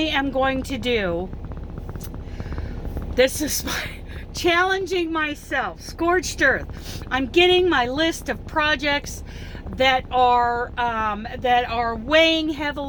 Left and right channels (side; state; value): both; identical; correlation 1.00